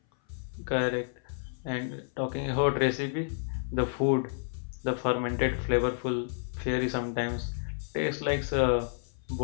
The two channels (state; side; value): silent; right; 56 dB below the other